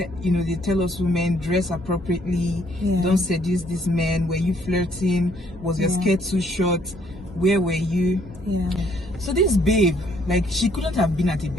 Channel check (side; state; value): both; normal; correlation 0.66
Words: they tell us women dress appropriately, don't seduce this man. Were you flirting? Was your skirt too short? Where were you? Yeah. So this babe, like, she couldn't have been at a